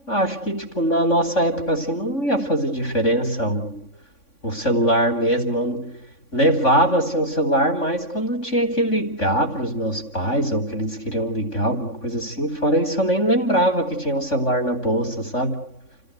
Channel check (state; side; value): late; right; 3.6 ms